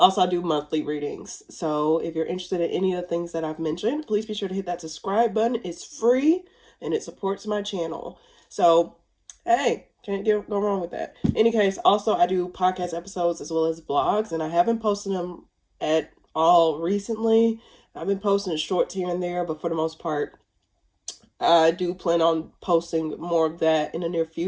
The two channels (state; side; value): identical; both; correlation 1.00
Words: I do monthly readings. So if you're interested in any of the things that I've mentioned, please be sure to hit that subscribe button. It's free and it supports my channel. So, hey, can't go wrong with that. In any case, also I do podcast episodes as well as vlogs, and I haven't posted them at all recently. I've been posting shorts here and there, but for the most part, I do plan on posting more of that in the near